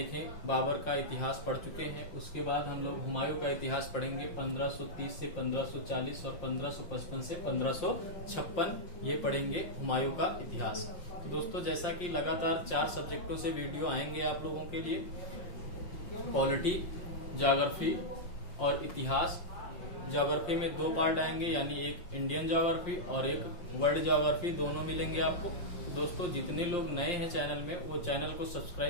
बाबर का इतिहास पढ़ चुके हैं। उसके बाद हम लोग हुमायूं का इतिहास पढ़ेंगे। 1530 से 1540 और 1555 से 1556 ये पढ़ेंगे हुमायूं का इतिहास। तो दोस्तों, जैसा कि लगातार 4 सब्जेक्टों से वीडियो आएंगे आप लोगों के लिए, पॉलिटी, ज्योग्राफी और इतिहास। ज्योग्राफी में 2 पार्ट आएंगे, यानी एक इंडियन ज्योग्राफी और एक वर्ल्ड ज्योग्राफी, दोनों मिलेंगे आपको। तो दोस्तों, जितने लोग नए हैं चैनल में, वो चैनल को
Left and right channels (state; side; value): late; right; 5.7 ms